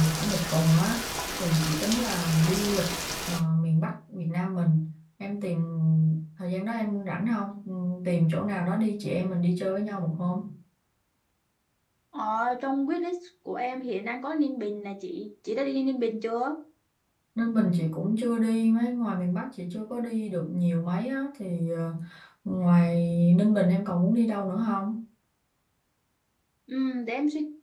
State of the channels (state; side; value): identical; both; correlation 1.00